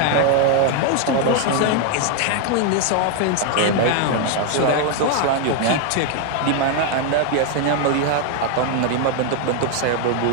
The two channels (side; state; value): both; different; correlation 0.01